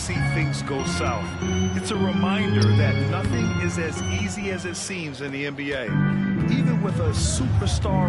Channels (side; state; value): both; identical; correlation 1.00